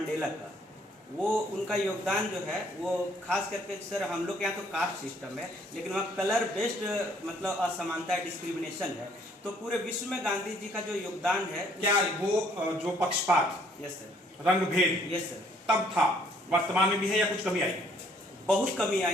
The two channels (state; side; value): normal; both; correlation 0.63